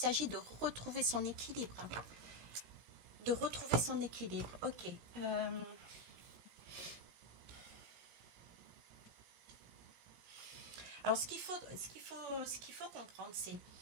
de retrouver son équilibre. De retrouver son équilibre. Ok. Alors, ce qu'il faut comprendre, c'est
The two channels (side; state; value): left; late; 17 ms